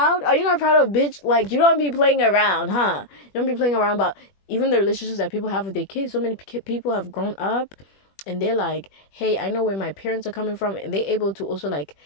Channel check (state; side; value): late; right; 21 ms